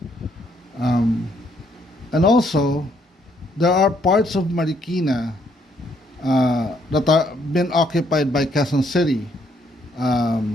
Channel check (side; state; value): both; normal; correlation 0.70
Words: and also there are parts of Marikina that are been occupied by Quezon City.